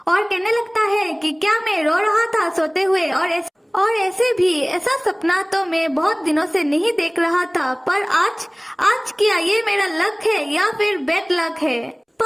और कहने लगता है कि क्या मैं रो रहा था सोते हुए, और ऐसे भी ऐसा सपना तो मैं बहुत दिनों से नहीं देख रहा था, पर आज क्या ये मेरा लक है या फिर बैड लक है।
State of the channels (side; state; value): both; identical; correlation 1.00